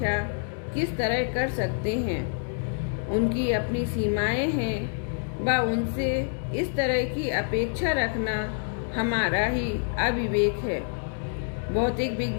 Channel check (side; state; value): right; silent; digital silence